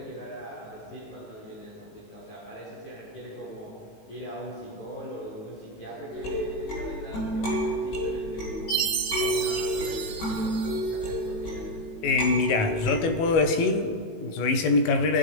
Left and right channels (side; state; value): right; late; 18 ms